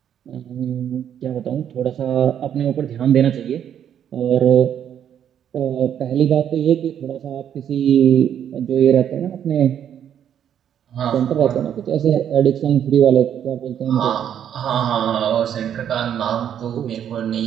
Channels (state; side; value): quieter; left; 9.4 dB